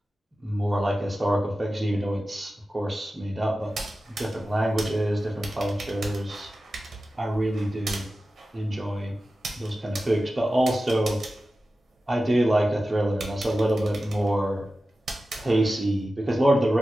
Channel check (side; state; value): both; normal; correlation 0.94